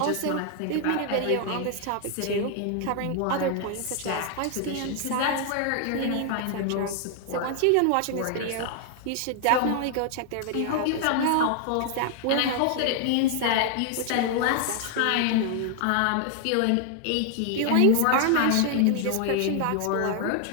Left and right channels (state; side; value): different; both; correlation 0.00